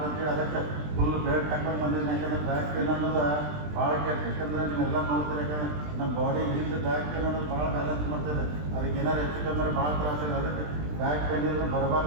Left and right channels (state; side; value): late; left; 20 ms